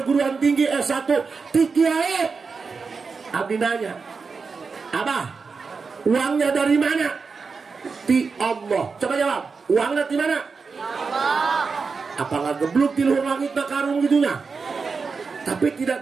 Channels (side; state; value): left; quieter; 4.9 dB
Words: tinggi S1 ti kiai abdi nanya abah uangnya dari mana ti Allah coba jawab uangnya di mana Allah apa nggak gebluk di luar langit na karung gitunya tapi tidak